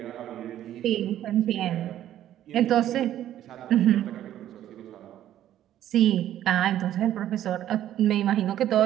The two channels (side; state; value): left; quieter; 12.0 dB